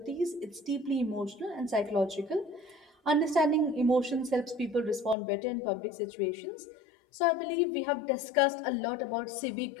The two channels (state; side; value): drops out; right; at 5.2 s